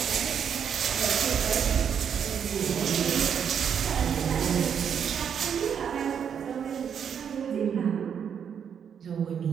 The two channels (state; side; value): quieter; left; 7.8 dB